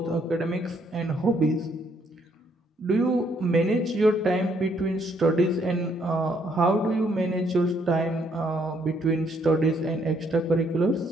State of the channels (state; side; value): normal; both; correlation 0.70